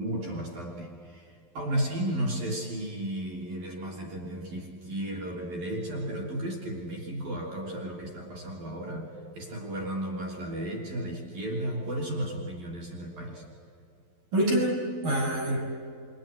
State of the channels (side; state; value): left; late; 11 ms